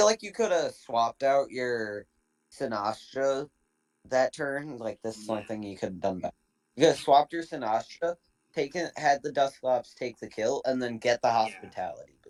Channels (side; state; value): both; identical; correlation 1.00